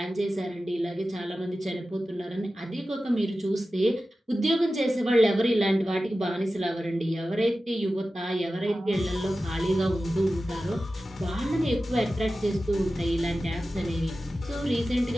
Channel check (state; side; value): normal; both; correlation 0.94